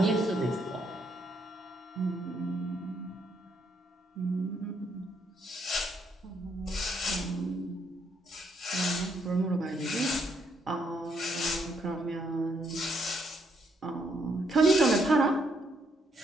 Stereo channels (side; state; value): both; normal; correlation 0.74